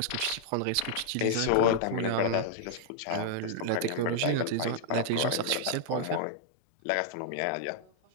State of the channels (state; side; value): different; both; correlation -0.01